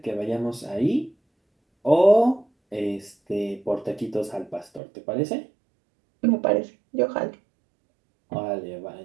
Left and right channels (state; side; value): drops out; left; at 4.8 s